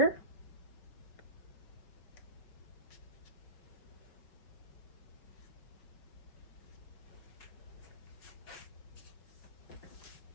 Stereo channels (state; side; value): late; right; 5.5 ms